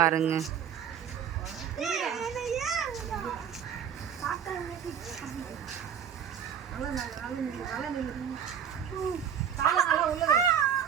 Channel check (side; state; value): left; quieter; 8.4 dB